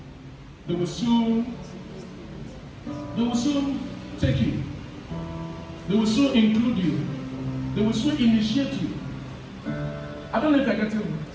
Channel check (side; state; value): both; identical; correlation 1.00